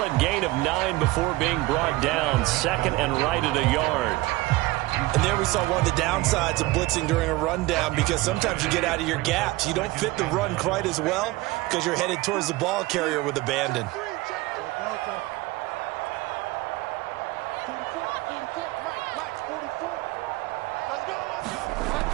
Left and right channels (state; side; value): quieter; left; 19.8 dB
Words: gain of 9 before being brought down. 2nd and right at a yard. And there we saw one of the downsides of blitzing during a rundown, because sometimes you get out of your gaps. You don't fit the run quite as well because you're headed towards the ball carrier with abandon.